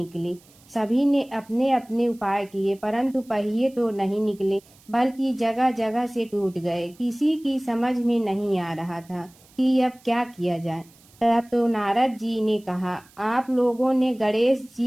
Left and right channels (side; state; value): right; noise; hiss, 28 dB below the sound